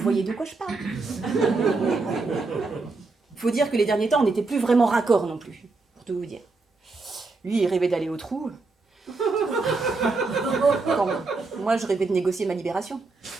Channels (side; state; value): left; quieter; 3.8 dB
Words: de quoi je parle. Faut dire que les derniers temps, on n'était plus vraiment raccord non plus, pour tout vous dire. Lui, il rêvait d'aller au trou. Quand moi, je rêvais de négocier ma libération.